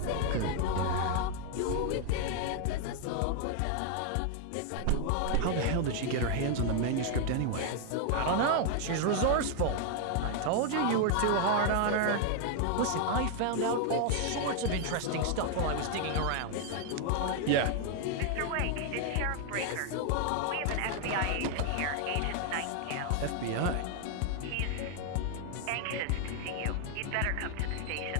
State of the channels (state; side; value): different; both; correlation 0.00